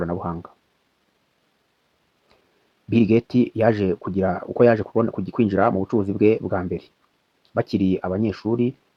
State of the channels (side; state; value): both; identical; correlation 1.00